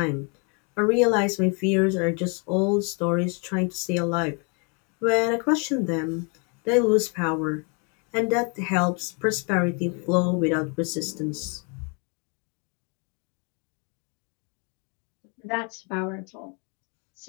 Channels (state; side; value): quieter; right; 34.6 dB